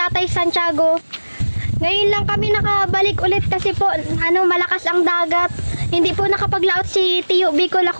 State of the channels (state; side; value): inverted; both; correlation -1.00